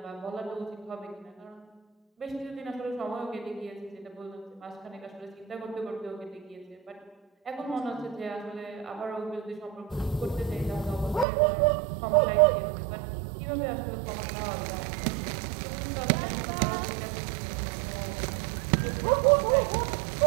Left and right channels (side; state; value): left; drops out; at 11.2 s